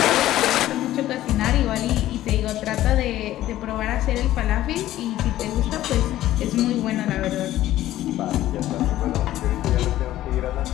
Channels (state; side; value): quieter; right; 14.1 dB